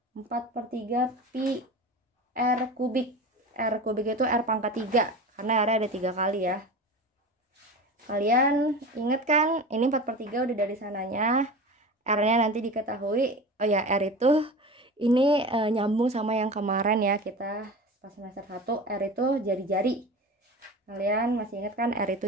4/3 pi R kubik. R kubik itu R pangkat 3 karena R ada 3 kali ya. Kalian inget kan ini 4/3 udah dari sananya. R nya nanti diketahui. Oh ya, R itu ini nyambung sama yang kemarin ya, kita pas semester 1 R itu jari-jari. Kalian masih ingat kan R itu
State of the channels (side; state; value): both; normal; correlation 0.32